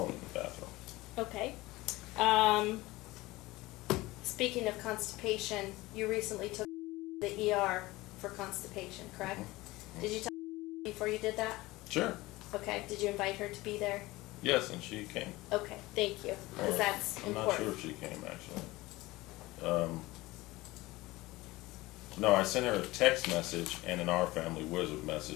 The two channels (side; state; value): right; quieter; 19.9 dB